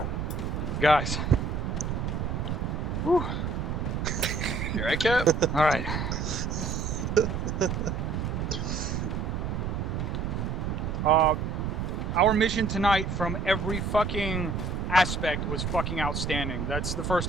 Guys. Whew. You right, Cap? All right. Our mission tonight from every fucking aspect was fucking outstanding. That's the first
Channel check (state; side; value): noise; right; rumble, 2 dB below the sound